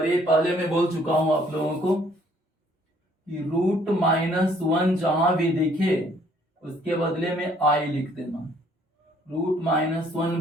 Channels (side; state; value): both; normal; correlation 0.62